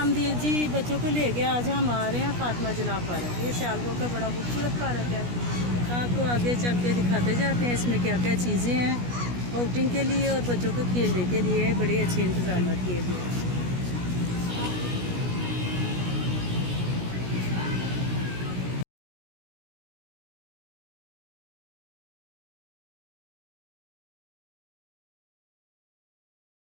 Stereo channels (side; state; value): left; late; 17 ms